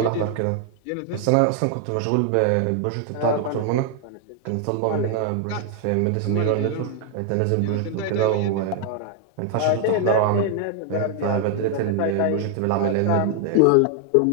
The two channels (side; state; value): both; different; correlation 0.00